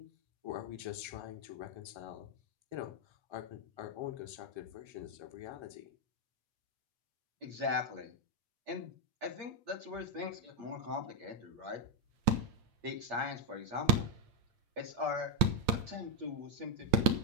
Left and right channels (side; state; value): left; late; 8.8 ms